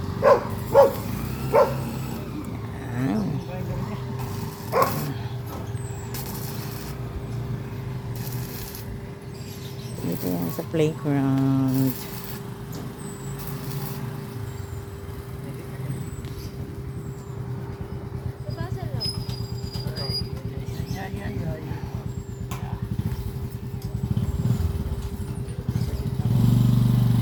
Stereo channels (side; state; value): both; identical; correlation 1.00